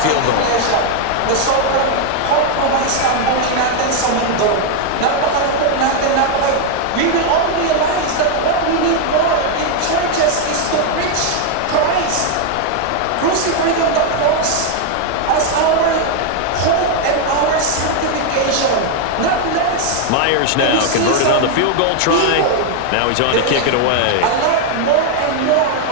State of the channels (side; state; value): both; different; correlation 0.00